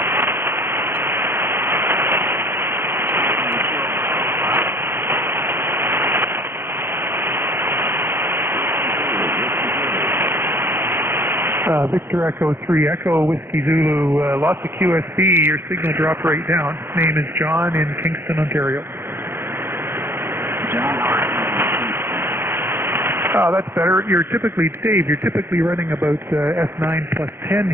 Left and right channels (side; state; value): left; late; 0.11 ms